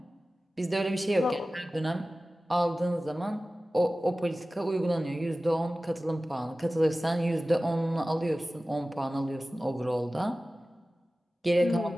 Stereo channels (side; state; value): both; normal; correlation 0.96